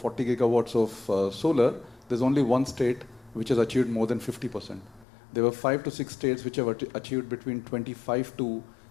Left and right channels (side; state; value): right; drops out; at 5.1 s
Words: gigawatts of solar, there's only one state which has achieved more than 50%. There were 5 to 6 states which have achieved between 25 to